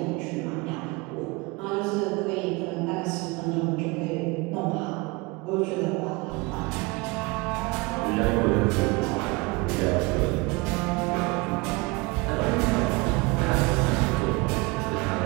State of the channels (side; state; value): left; quieter; 25.8 dB